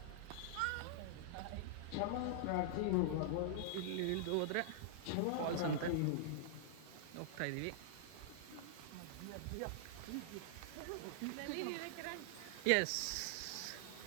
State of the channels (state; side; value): different; both; correlation -0.01